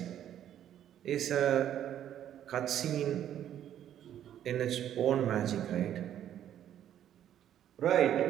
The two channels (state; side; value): quieter; left; 10.7 dB